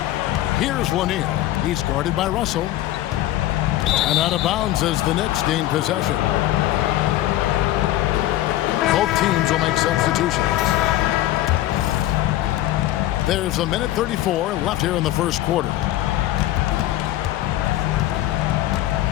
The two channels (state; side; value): quieter; right; 14.7 dB